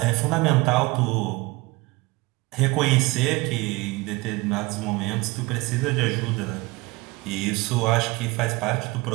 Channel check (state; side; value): quieter; left; 23.1 dB